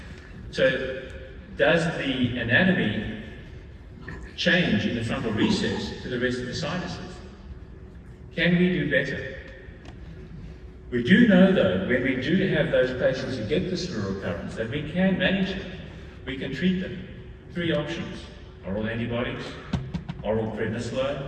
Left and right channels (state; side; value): identical; both; correlation 1.00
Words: So does the anatomy change in the frontal recess to the rest of the sinuses? Can we do better? We do know, though, when we do have those patients who get this recurrence, that we can manage them. We can treat them. 3 options: oral antibiotics, oral prednisolone,